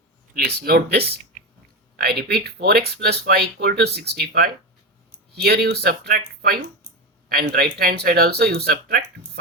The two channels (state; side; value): normal; both; correlation 0.18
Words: Please note this. I repeat, 4x plus 5 equal to 65. Here you subtract 5 and right hand side also you subtract